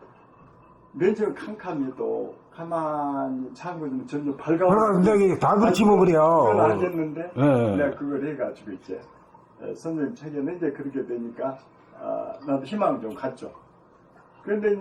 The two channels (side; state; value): both; identical; correlation 1.00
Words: 맨 처음 캄캄해도 가만히 참고는 점점 밝아오고. 굉장히 다 그렇지 뭐 그래요. 그건 알겠는데, 내가 그걸 해가지고 이제, 선생님 책에는 이제 그렇게 되니까, 나도 희망을 좀 갖죠. 그런데